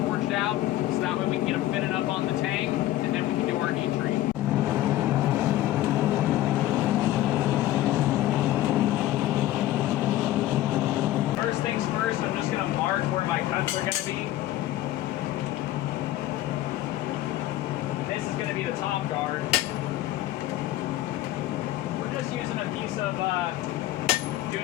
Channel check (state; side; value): quieter; right; 14.6 dB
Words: out, so that way we can get them fitted up on the tang, and then we can do our heat treat. First things first, I'm just going to mark where my cuts are going to be. This is going to be the top guard. Just using a piece of